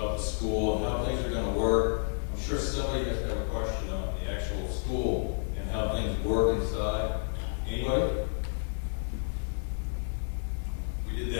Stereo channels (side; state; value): right; silent; digital silence